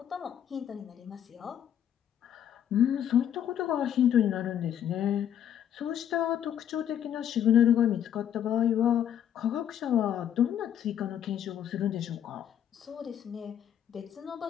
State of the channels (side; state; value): right; quieter; 9.8 dB